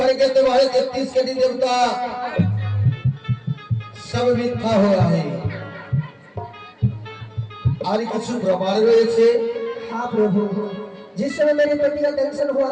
तुम्हारे 33 कटी देवता सब मिथ्या हो रहा है। আর কিছু প্রমাণ রয়েছে। हाँ प्रभु, जिस समय मेरे पति का दर्शन हुआ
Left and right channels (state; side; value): identical; both; correlation 1.00